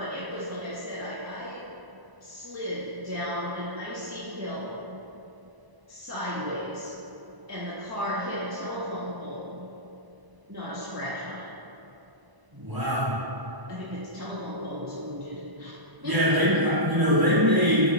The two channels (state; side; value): late; left; 1.0 ms